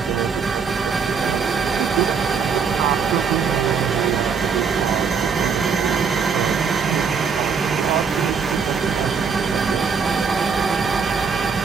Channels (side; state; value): left; quieter; 5.9 dB